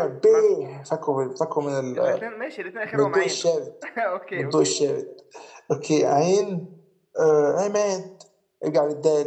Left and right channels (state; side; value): identical; both; correlation 1.00